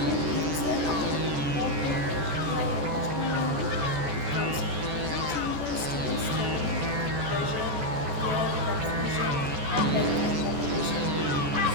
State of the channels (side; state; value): left; late; 14 ms